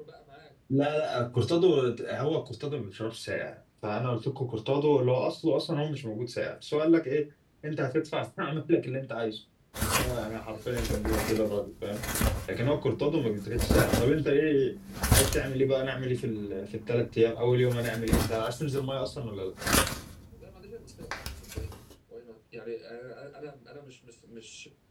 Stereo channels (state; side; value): identical; both; correlation 1.00